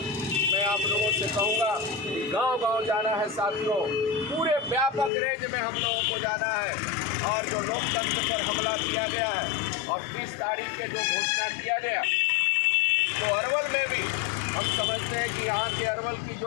मैं आप लोगों से कहूँगा, गांव-गांव जाना है साथियों, पूरे व्यापक रेंज में हम लोगों को जाना है। और जो लोकतंत्र पर हमला किया गया है और 30 तारीख के जो घोषणा किया गया, तो अरवल में भी हम समझते हैं कि यहाँ के अरवल की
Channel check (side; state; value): right; drops out; at 5.1 s